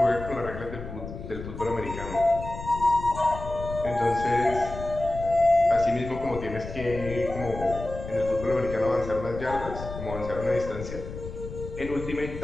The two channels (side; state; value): left; noise; rumble, 10 dB below the sound